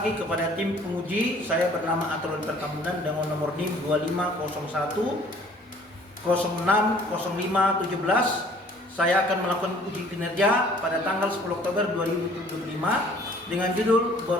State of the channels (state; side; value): normal; both; correlation 0.55